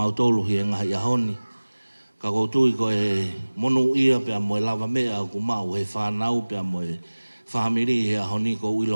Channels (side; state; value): both; inverted; correlation -1.00